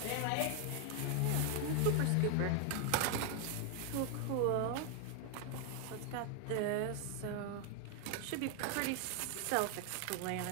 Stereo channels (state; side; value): different; both; correlation 0.00